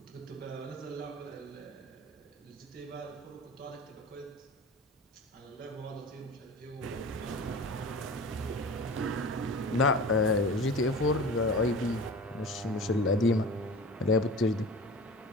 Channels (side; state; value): both; normal; correlation 0.36